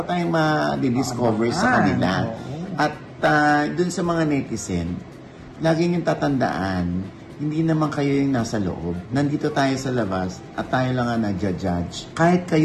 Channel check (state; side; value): identical; both; correlation 1.00